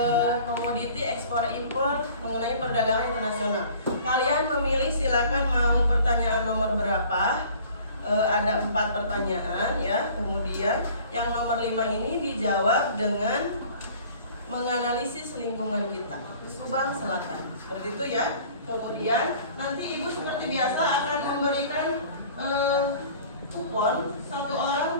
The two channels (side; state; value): both; inverted; correlation -0.49